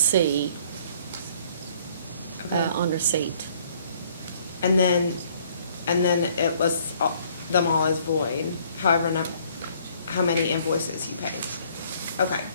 Okay. on receipt. And then it was, them all as void, however, how many invoices he paid. Okay.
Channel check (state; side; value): inverted; both; correlation -0.61